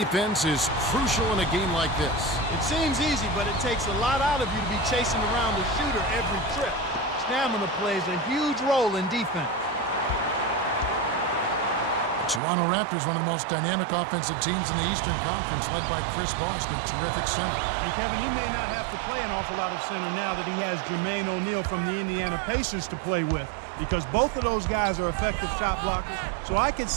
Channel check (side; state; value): left; drops out; at 12.4 s